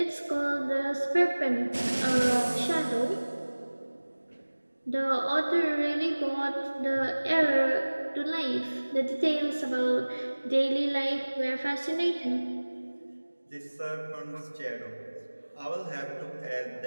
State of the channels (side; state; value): both; inverted; correlation -1.00